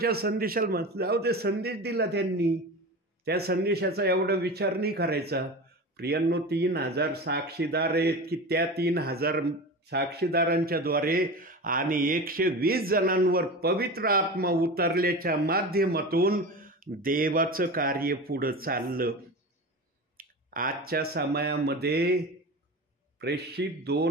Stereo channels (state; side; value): normal; both; correlation 0.29